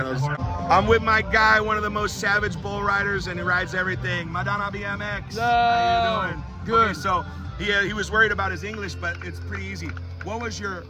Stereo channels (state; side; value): identical; both; correlation 1.00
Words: I'm with my guy, one of the most savage bull riders, and he rides everything. Madonna BMX. How you doing? Good. Okay, so he was worried about his English, but it's pretty easy. What was your